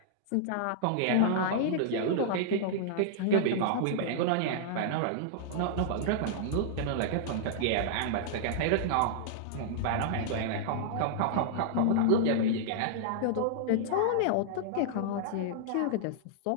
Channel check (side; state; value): both; different; correlation -0.01